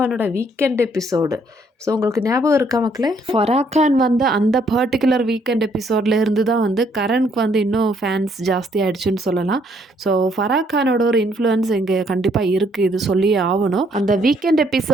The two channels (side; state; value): both; normal; correlation 0.68